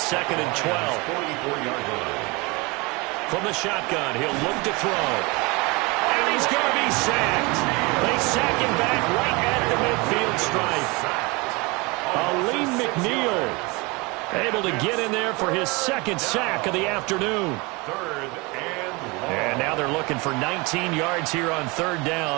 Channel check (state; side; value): quieter; left; 26.2 dB